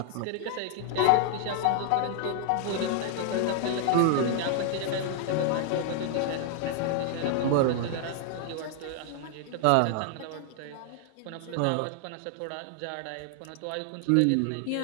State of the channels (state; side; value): different; both; correlation 0.00